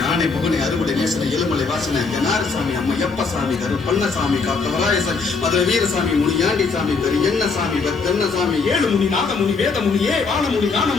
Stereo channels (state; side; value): quieter; right; 4.6 dB